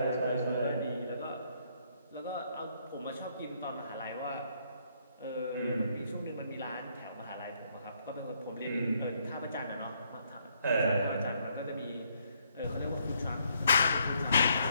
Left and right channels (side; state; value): both; inverted; correlation -0.71